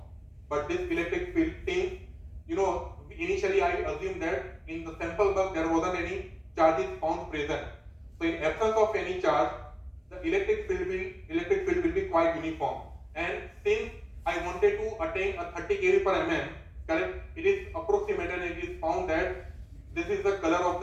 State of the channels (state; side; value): identical; both; correlation 1.00